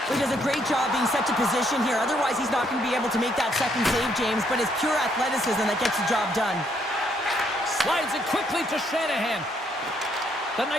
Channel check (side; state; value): both; normal; correlation 0.71